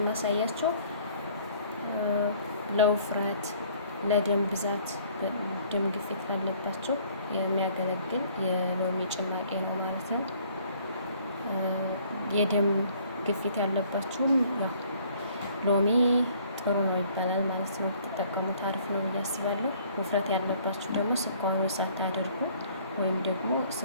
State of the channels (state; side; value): inverted; both; correlation -0.58